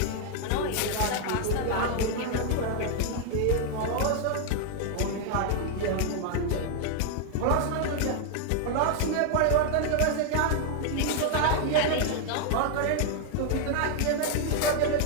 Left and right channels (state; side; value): different; both; correlation 0.00